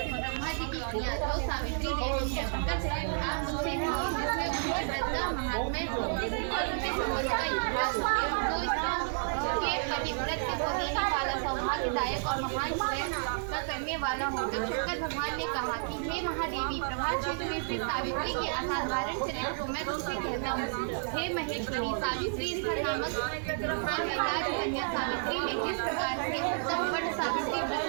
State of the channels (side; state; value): left; silent; 57 dB below the other